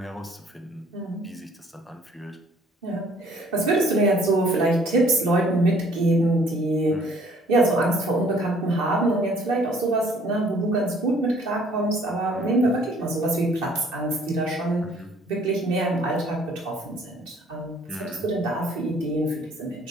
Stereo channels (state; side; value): normal; both; correlation 0.58